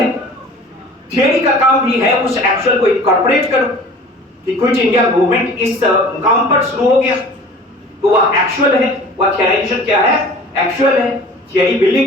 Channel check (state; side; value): normal; both; correlation 0.44